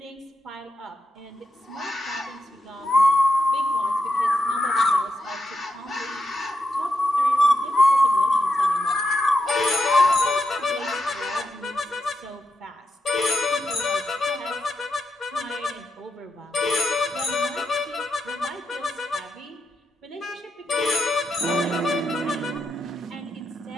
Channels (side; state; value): both; normal; correlation 0.86